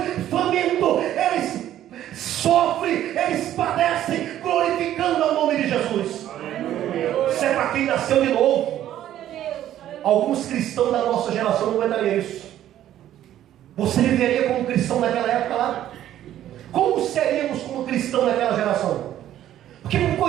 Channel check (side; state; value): left; quieter; 12.1 dB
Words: famintos. Eles Jesus. Isso é para quem nasceu de novo. Alguns cristãos da nossa geração não aguentariam isso. Você viveria como cristão naquela época lá? Como seríamos como cristão naquela geração? Porque uma